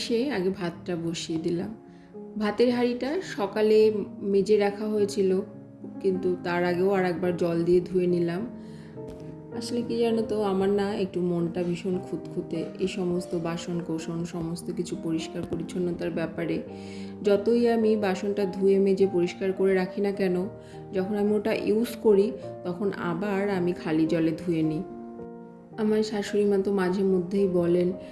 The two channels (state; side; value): identical; both; correlation 1.00